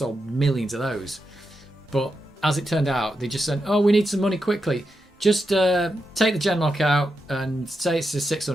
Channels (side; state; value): both; normal; correlation 0.86